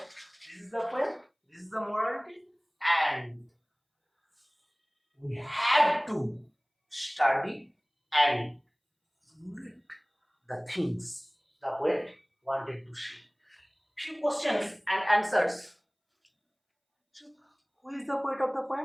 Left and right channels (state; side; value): identical; both; correlation 1.00